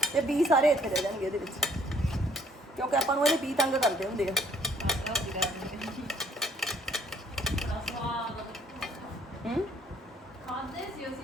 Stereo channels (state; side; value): normal; both; correlation 0.61